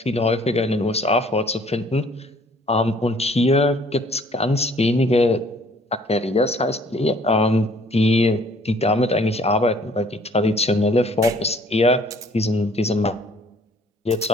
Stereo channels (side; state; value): both; normal; correlation 0.58